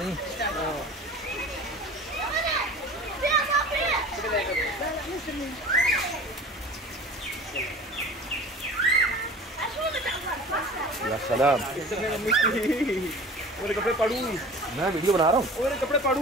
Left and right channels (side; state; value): both; normal; correlation 0.40